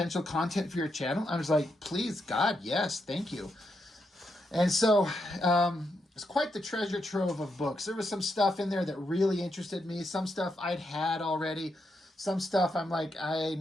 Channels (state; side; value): normal; both; correlation 0.82